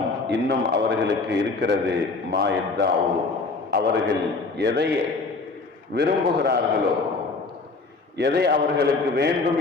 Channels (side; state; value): right; quieter; 3.9 dB